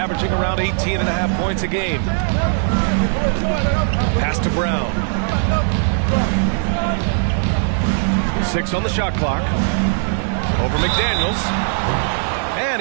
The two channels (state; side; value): silent; left; digital silence